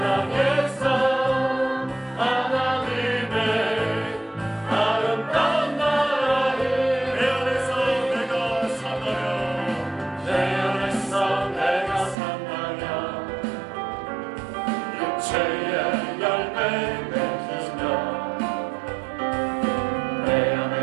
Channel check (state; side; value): drops out; left; at 12.2 s